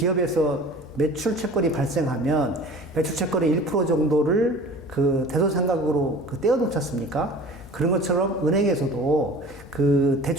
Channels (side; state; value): both; normal; correlation 0.42